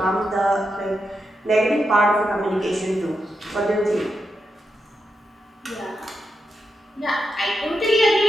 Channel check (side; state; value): both; normal; correlation 0.86